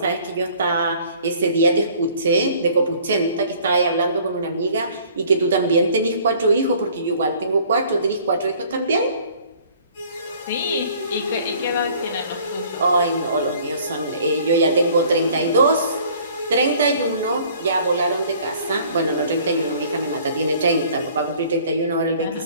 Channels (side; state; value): both; inverted; correlation -0.55